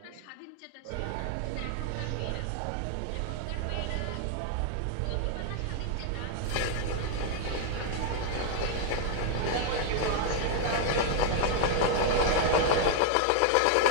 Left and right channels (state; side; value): different; both; correlation 0.00